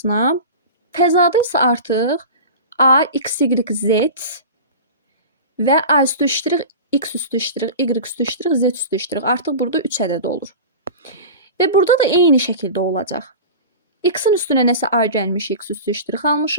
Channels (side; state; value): both; inverted; correlation -0.32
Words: Fəzada isə artıq A, x, y, z və A üstü ştrix, x üstü ştrix, y üstü ştrix, z üstü ştrix. Artıq burada 3 ədəd olur. Və burada da eyni şəkildə olacaq. X-in üstünə nəsə A gəlmişik, x üstü ştrix